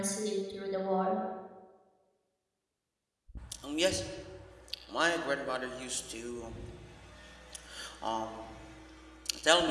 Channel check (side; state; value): both; identical; correlation 1.00